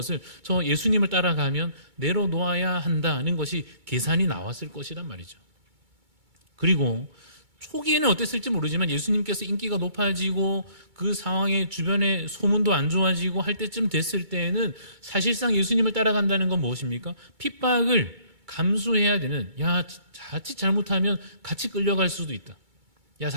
저 예수님을 따라가면 내려놓아야 한다는 것이 계산이 나왔을 것이란 말이죠. 그리고 초기에는 어땠을지 모르지만 예수님께서 인기가 높아지고 그 상황에 주변의 소문도 안 좋아지고 할 때쯤 됐을 때에는 사실상 예수님을 따라간다는 건 무엇입니까? 핍박을 감수해야 되는, 야, 자칫 잘못하면 같이 끌려갈 수도 있다, 야,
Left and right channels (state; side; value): late; left; 2.3 ms